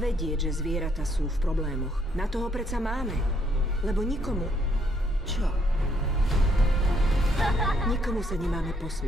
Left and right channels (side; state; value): both; normal; correlation 0.70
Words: vedieť, že zvieratá sú v problémoch. Na toho predsa máme. Lebo nikomu... Čo? Nikomu sa nemáme